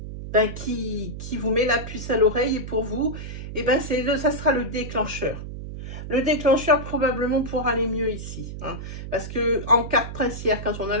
vous met la puce à l'oreille et pour vous, ça sera le déclencheur. Le déclencheur probablement pour aller mieux ici. Hein, parce que en carte princière, quand on a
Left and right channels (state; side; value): noise; right; hum, 9 dB below the sound